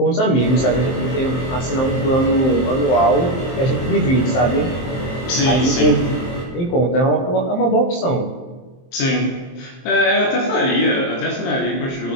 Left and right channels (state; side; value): late; right; 23 ms